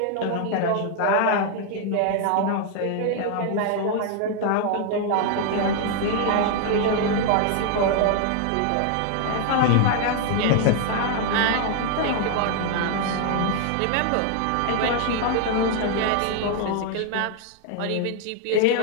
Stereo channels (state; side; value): different; both; correlation 0.00